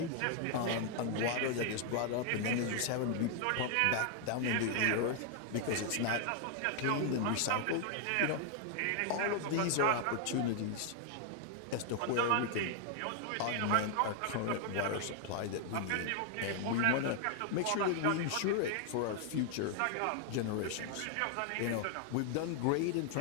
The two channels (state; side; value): different; both; correlation 0.00